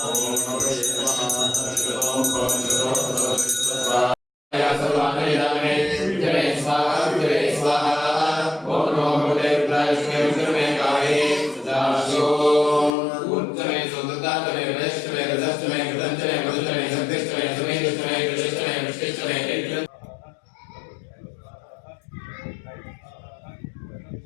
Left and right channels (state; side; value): drops out; right; at 12.9 s